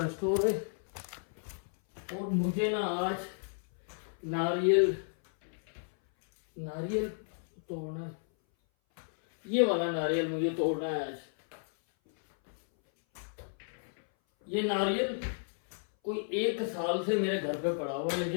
स्टोर है और मुझे ना आज नारियल तोड़ना है। ये वाला नारियल मुझे तोड़ना है आज। ये नारियल कोई 1 साल से मेरे घर पे पड़ा हुआ है,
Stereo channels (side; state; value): right; silent; 56 dB below the other